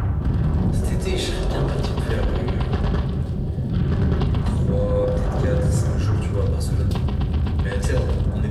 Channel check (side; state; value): both; identical; correlation 1.00